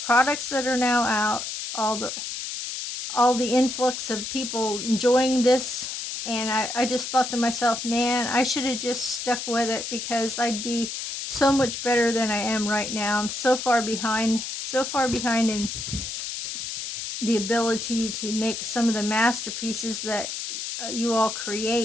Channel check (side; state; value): left; noise; hiss, 6 dB below the sound